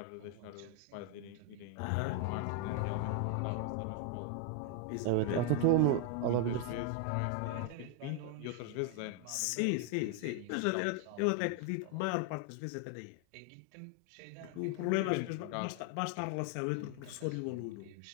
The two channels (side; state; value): both; different; correlation 0.00